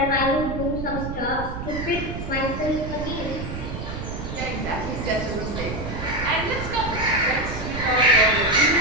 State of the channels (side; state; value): right; noise; rumble, 7 dB below the sound